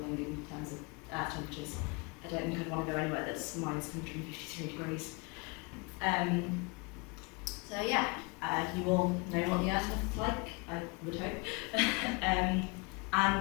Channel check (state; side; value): quieter; right; 29.4 dB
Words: in terms of Earth temperatures. I don't think I'd want to go anywhere that's minus 153 degrees. So yeah, you all know what the Earth looks like, I would hope. And